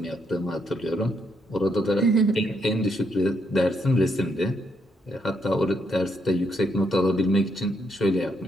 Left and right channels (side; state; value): both; normal; correlation 0.76